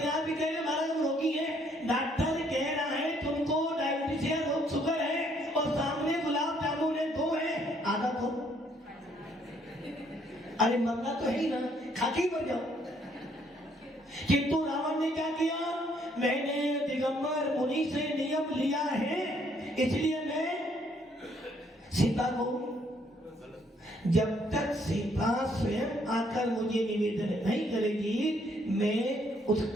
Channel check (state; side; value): normal; both; correlation 0.67